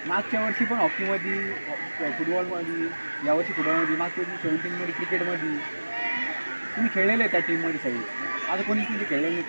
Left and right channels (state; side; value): inverted; both; correlation -1.00